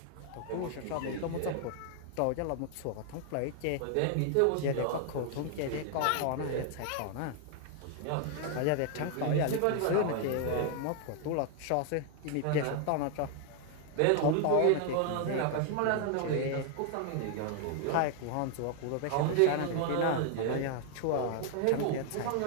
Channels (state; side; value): different; both; correlation 0.00